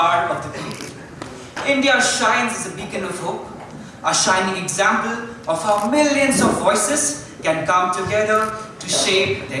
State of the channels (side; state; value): both; identical; correlation 1.00